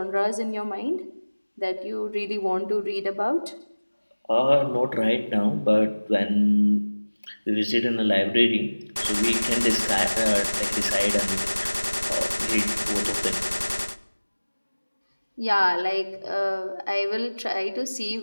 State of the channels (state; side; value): inverted; both; correlation -1.00